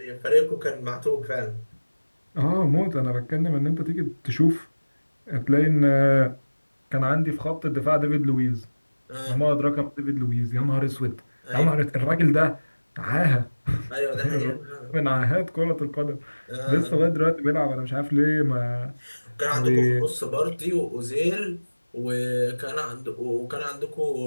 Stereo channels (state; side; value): inverted; both; correlation -1.00